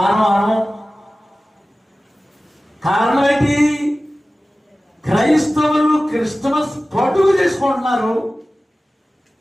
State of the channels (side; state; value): both; normal; correlation 0.96